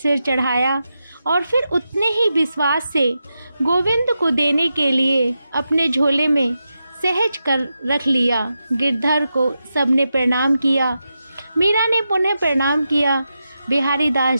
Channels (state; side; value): inverted; both; correlation -0.89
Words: चढ़ाया और फिर उतने ही विश्वास से गोविंद को देने के लिए अपने झोले में सहज कर रख लिया। गिरधर को सबने प्रणाम किया। मीरा ने पुनः प्रणाम किया। बिहारी